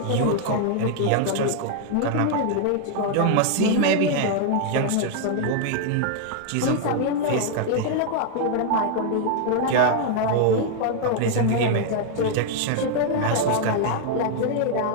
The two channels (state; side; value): different; both; correlation 0.00